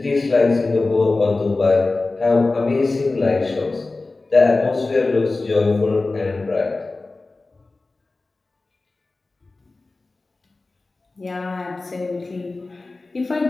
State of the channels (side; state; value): right; quieter; 3.4 dB